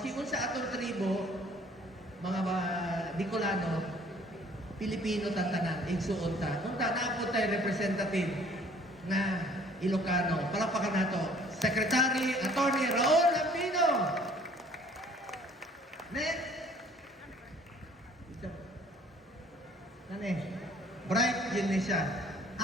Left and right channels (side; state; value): both; normal; correlation 0.55